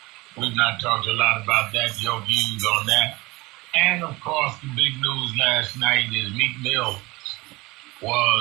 We've not talked a lot about that, your views on that. And, of course, the big news last night is Meek Mill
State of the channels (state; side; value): quieter; left; 21.9 dB